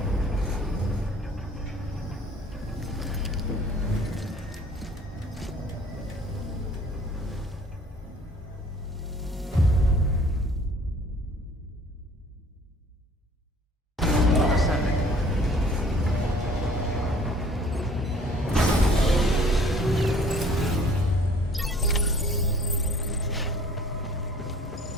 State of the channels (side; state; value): both; normal; correlation 0.53